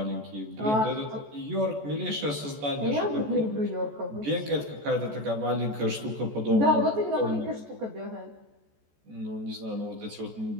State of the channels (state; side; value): late; left; 14 ms